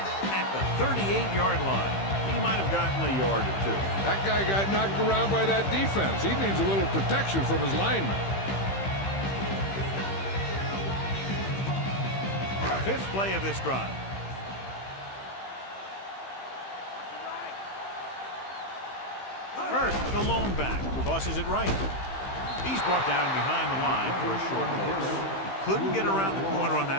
at the 38-yard line. He might have gotten a yard or two. That guy got knocked around by that defense. He needs a little protection from his lineman. 5th play of this drive. First, the lone back tosses it right. He's brought down behind the line for a short loss. He couldn't get around the corner on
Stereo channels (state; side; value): late; right; 15 ms